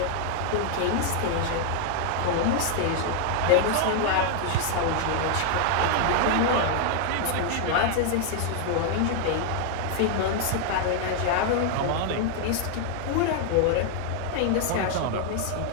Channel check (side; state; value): both; different; correlation 0.00